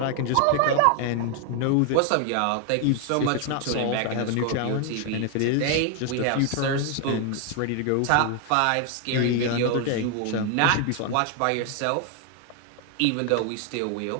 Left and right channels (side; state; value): both; different; correlation 0.00